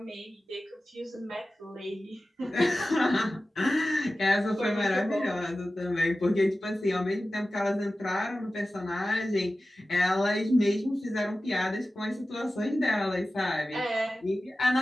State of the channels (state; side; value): normal; both; correlation 0.95